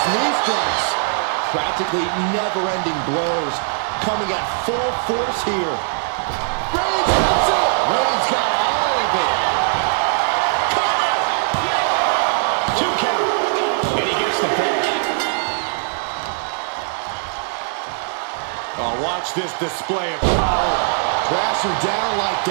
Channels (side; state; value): left; silent; 66 dB below the other